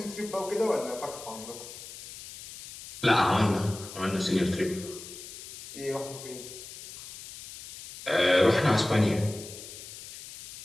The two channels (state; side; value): noise; left; hiss, 14 dB below the sound